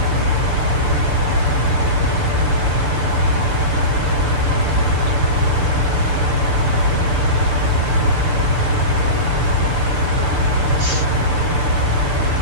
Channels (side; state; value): left; late; 6.8 ms